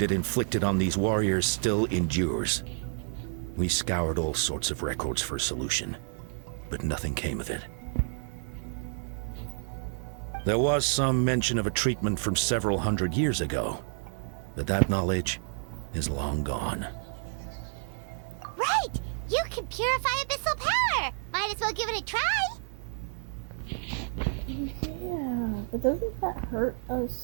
it inflicted on these warriors still endures. We scoured all sorts of records for a solution, but nothing came of it. There was some mention of a treatment from several hundred years ago, but that knowledge is long gone. Right! You can purify abyssal power! Might as well give it a try. Yeah, but doesn't that hurt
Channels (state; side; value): silent; left; digital silence